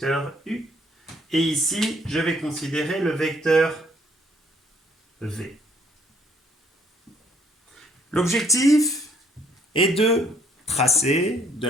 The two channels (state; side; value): normal; both; correlation 0.64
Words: U, et ici, je vais considérer le vecteur V. L'objectif est de tracer, de